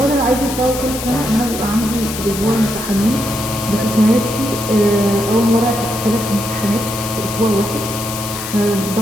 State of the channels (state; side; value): noise; left; hiss, 8 dB below the sound